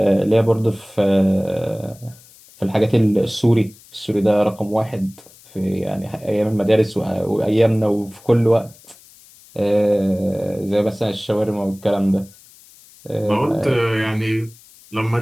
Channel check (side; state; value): left; noise; hiss, 25 dB below the sound